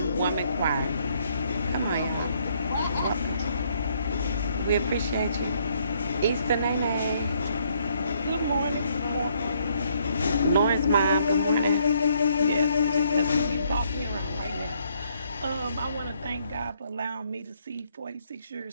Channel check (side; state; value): both; inverted; correlation -0.69